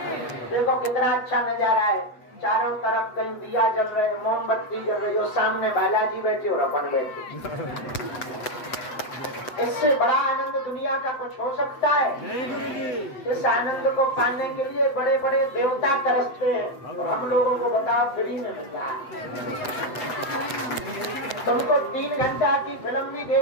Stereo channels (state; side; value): late; right; 8.0 ms